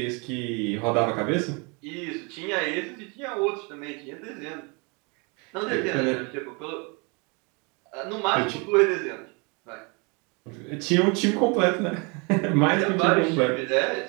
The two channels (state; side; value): quieter; left; 31.2 dB